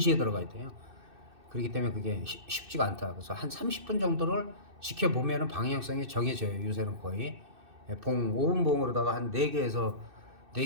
들어가야 돼요. 그렇기 때문에 그게 쉽지가 않다. 그래서 한 30분 정도를 지켜보면 방향성이 정해져요. 요새는 거의 봉 5분 봉으로다가 한 4개에서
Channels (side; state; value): left; late; 2.6 ms